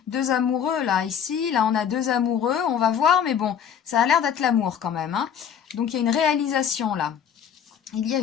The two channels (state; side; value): quieter; right; 8.2 dB